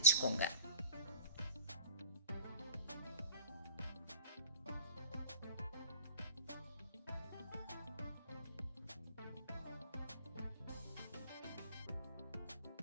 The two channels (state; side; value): inverted; both; correlation -0.42